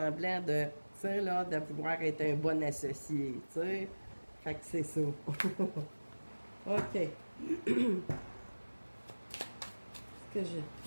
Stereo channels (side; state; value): both; inverted; correlation -1.00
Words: de, tu sais, là, de pouvoir être un bon associé, tu sais. Fait que c'est ça. OK. Est-ce que j'ai